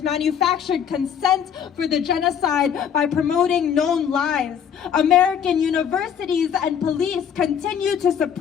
manufactured consent for the genocide by promoting known lies. American universities and police continue to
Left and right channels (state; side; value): quieter; right; 8.1 dB